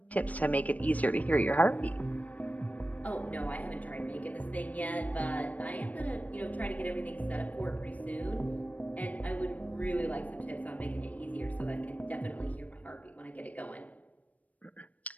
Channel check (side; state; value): right; late; 0.071 ms